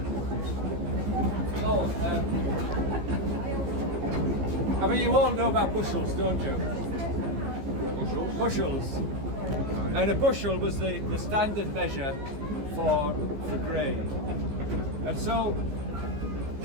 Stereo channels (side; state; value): left; late; 15 ms